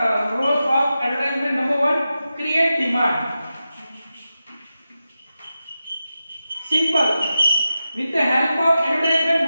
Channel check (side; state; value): both; inverted; correlation -0.91